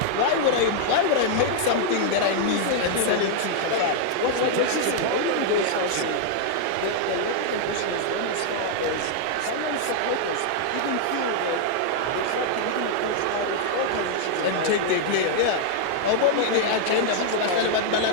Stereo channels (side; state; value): both; different; correlation -0.01